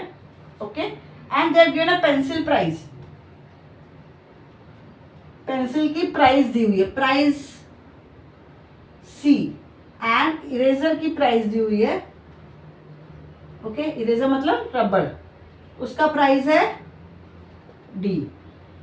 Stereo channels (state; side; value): identical; both; correlation 1.00